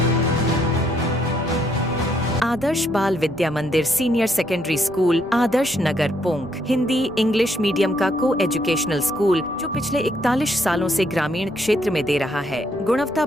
आदर्श बाल विद्या मंदिर senior secondary school Adarsh Nagar पोंक Hindi English medium का को एजुकेशनल स्कूल जो पिछले 41 सालों से ग्रामीण क्षेत्र में दे रहा है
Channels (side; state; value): right; noise; rumble, 22 dB below the sound